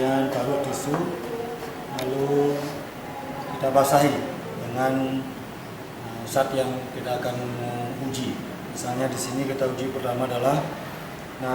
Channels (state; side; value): identical; both; correlation 1.00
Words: taruh tisu, lalu kita basahi dengan zat yang kita akan uji. Misalnya di sini kita uji pertama adalah